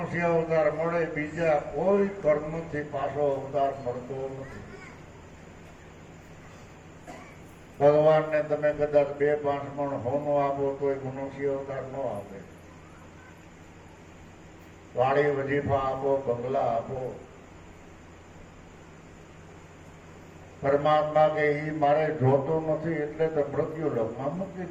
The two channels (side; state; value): both; identical; correlation 1.00